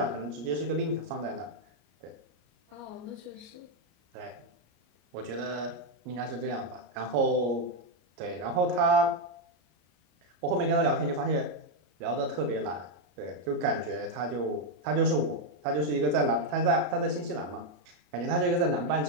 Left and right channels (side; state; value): left; late; 34 ms